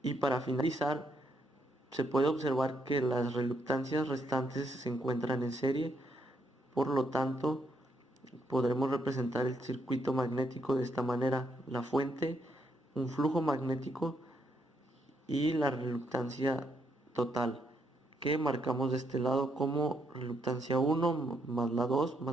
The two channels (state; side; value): normal; both; correlation 0.76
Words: Y para finalizar, se puede observar que las reluctancias restantes se encuentran en serie. Por lo tanto, podremos representar el circuito magnético de esta manera: la fuente, un flujo magnético y la reluctancia total, que marcamos de este lado como reluctancia 1 más la 2